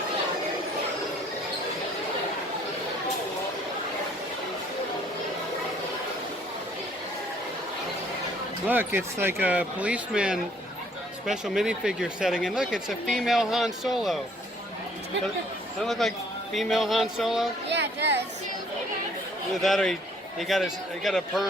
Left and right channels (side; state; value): both; normal; correlation 0.60